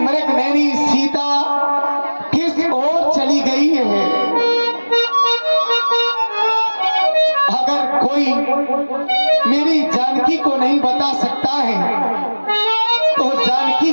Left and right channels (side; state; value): both; inverted; correlation -1.00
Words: नैनी सीता किस ओर चली गई है? अगर कोई मेरी जानकी को नहीं बता सकता है तो जानकी